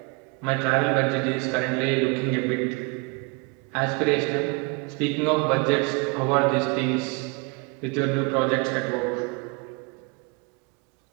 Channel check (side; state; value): left; quieter; 29.8 dB